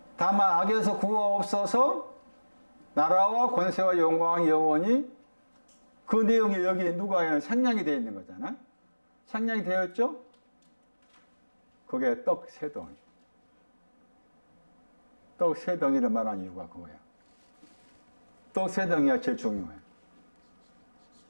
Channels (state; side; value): inverted; both; correlation -1.00